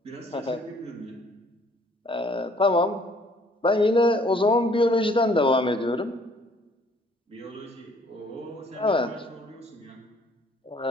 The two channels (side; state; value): both; normal; correlation 0.61